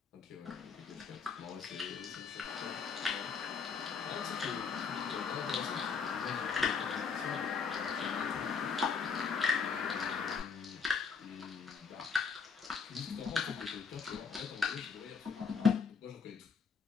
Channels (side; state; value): right; quieter; 5.7 dB